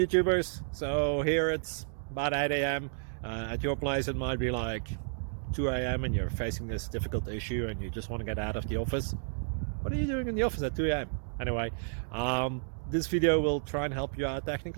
So here it's about 8 a.m. At your place it might be like 2 a.m. and you're facing this difficult issue and you just want to get out of the office. What are you doing in the office at 2 a.m.? Anyway, this video will try and help you out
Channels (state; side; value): silent; left; digital silence